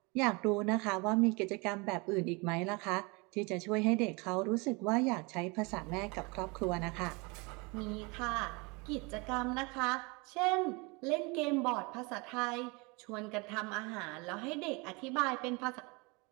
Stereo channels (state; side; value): quieter; left; 28.2 dB